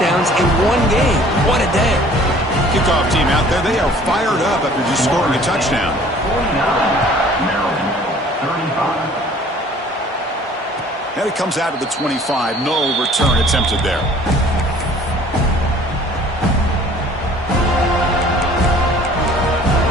in one game? What a day. Kickoff team out there, they are fired up after just scoring a touchdown. And it comes out of the 25. No return attempted there.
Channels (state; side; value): normal; both; correlation 0.52